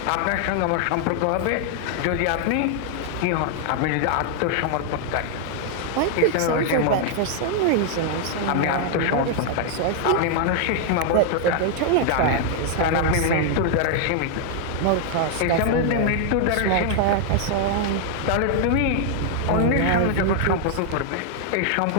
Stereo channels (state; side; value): different; both; correlation 0.00